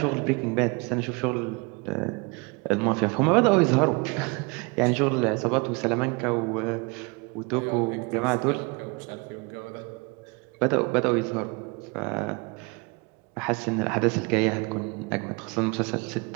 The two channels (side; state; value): left; quieter; 28.6 dB